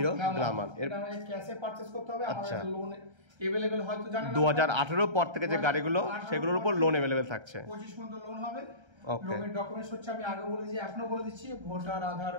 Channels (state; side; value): late; left; 1.3 ms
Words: গ্ল্যামার। এটা আমাদের ক্যাশে পারচেজ করতে হবে। আমাদের লোন अवेलेबल হয়তো জানেন 2018 পর থেকে যে গাড়িগুলো সেগুলোর উপর লোন अवेलेबल থাকছে। 25 পর্যন্ত লোন হবে। লোনের ডকুমেন্টস হচ্ছে, আমি আগে বলে দিয়েছি, এখনো বলে দিচ্ছি, voter, Aadhaar,